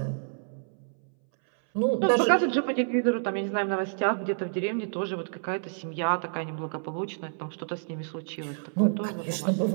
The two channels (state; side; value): silent; left; 59 dB below the other